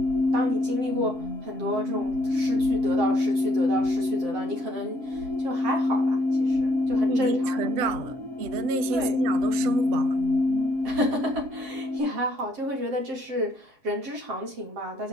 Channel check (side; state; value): left; late; 7.6 ms